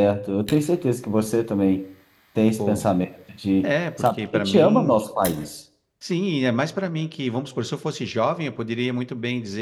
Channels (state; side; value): identical; both; correlation 1.00